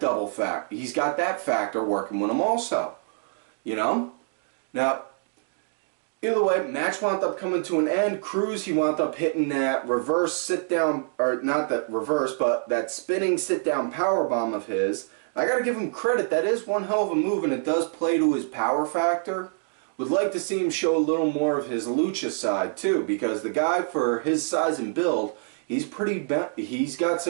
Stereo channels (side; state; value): left; silent; digital silence